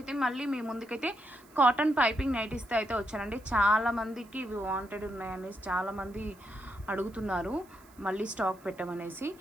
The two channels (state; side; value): noise; right; hiss, 27 dB below the sound